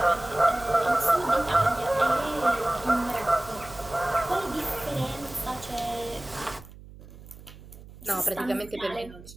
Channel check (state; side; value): noise; right; hum, 18 dB below the sound